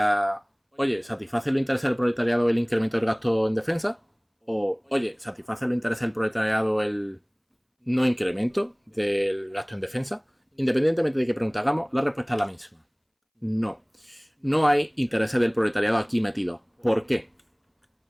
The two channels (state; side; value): identical; both; correlation 1.00